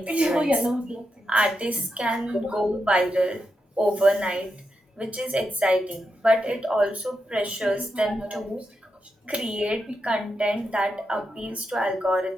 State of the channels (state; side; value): normal; both; correlation 0.86